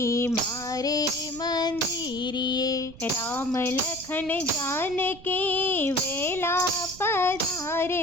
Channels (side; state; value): right; noise; rumble, 18 dB below the sound